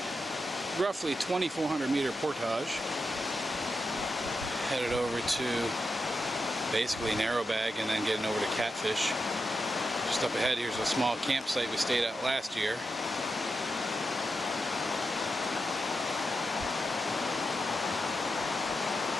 roughly 2,400 meter portage, headed over to basically Narrowbag and then getting over to Catfish. Just up ahead here's a small campsite we stayed at last year.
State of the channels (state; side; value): normal; both; correlation 0.87